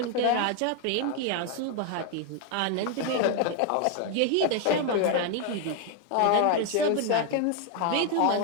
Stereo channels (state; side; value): different; both; correlation 0.01